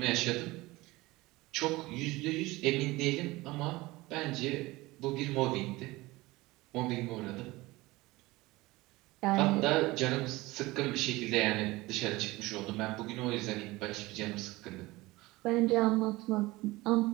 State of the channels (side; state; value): left; quieter; 20.5 dB